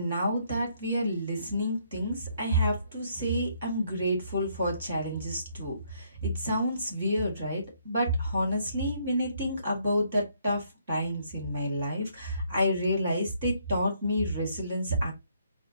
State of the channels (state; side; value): inverted; both; correlation -0.69